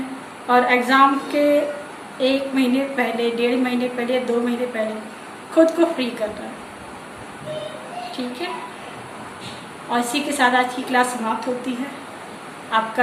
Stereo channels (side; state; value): both; identical; correlation 1.00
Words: और एग्ज़ाम के 1 महीने पहले, 1.5 महीने पहले, 2 महीने पहले खुद को फ्री करना है। ठीक है, और इसी के साथ आज की क्लास समाप्त होती है। आपका